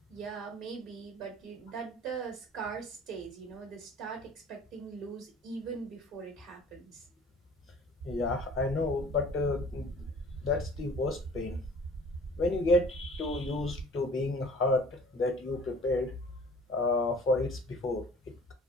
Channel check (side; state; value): both; normal; correlation 0.49